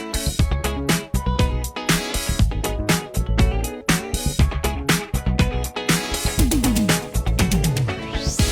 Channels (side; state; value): both; identical; correlation 1.00